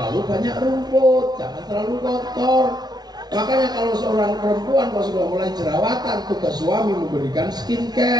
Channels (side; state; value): left; late; 0.20 ms